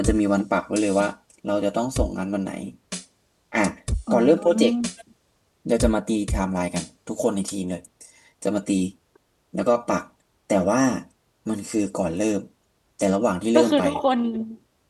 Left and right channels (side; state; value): both; identical; correlation 1.00